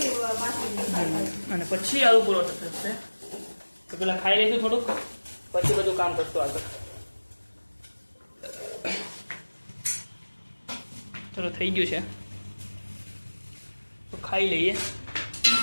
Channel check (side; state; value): both; inverted; correlation -1.00